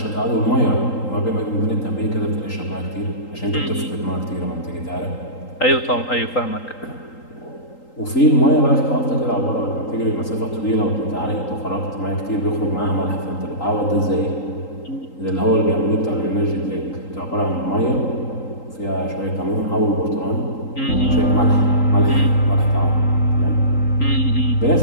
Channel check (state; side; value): late; right; 3.8 ms